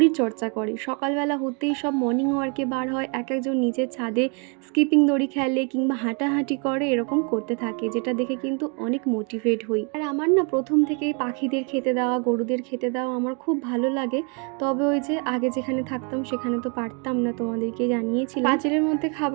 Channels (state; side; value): quieter; left; 36.1 dB